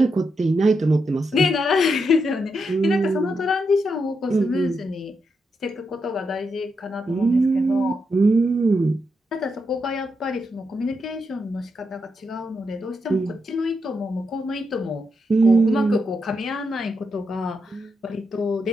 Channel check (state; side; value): normal; both; correlation 0.83